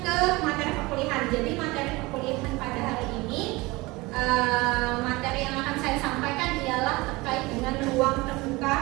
ke materi perkuliahan. Jadi materi perkuliahan pada hari ini, materi yang akan saya sampaikan ialah terkait dengan ruang terbuka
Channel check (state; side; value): quieter; left; 22.5 dB